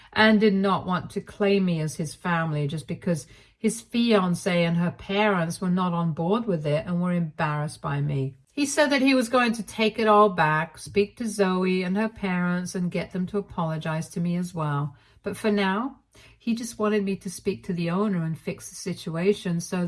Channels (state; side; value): identical; both; correlation 1.00